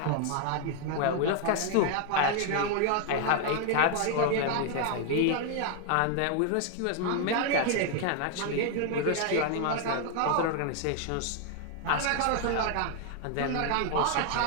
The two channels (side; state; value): both; different; correlation 0.00